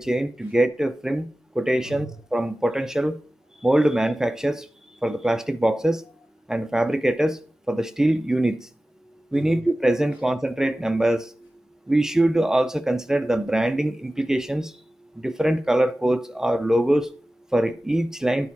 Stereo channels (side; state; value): both; normal; correlation 0.96